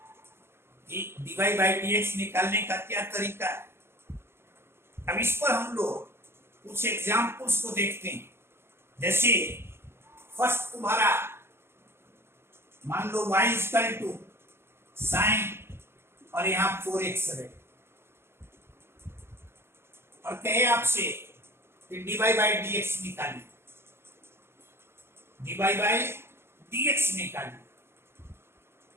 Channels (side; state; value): left; late; 0.12 ms